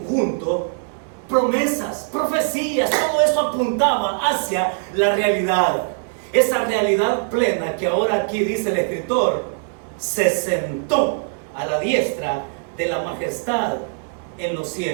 promesas, profecías, todo eso apuntaba hacia la realidad. Esa realidad plena que ahora aquí dice el escritor, se sentó a la diestra de la majestad en los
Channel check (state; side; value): silent; left; digital silence